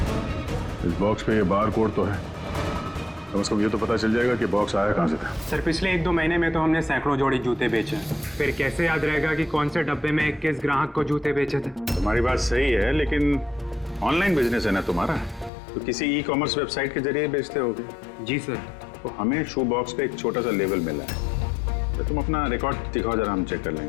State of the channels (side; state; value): right; drops out; at 15.5 s